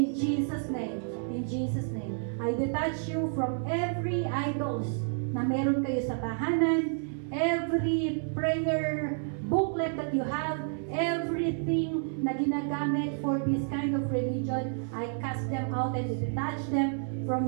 Jesus' name. In Jesus' name. I detach you from every idols na meron kayo sa tahanan, every prayer booklet that you have, everything na ginagamit for this kind of religion, I cast them out and detach them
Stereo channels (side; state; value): left; silent; 58 dB below the other